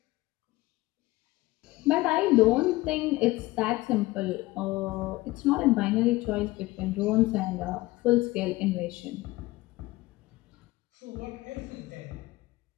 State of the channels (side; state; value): right; quieter; 19.5 dB